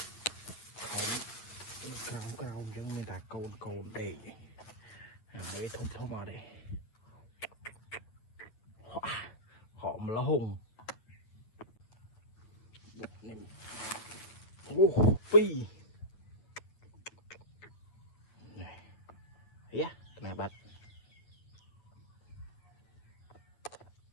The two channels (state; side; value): late; right; 8.7 ms